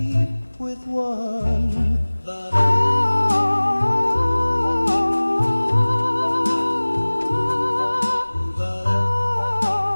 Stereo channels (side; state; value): both; inverted; correlation -1.00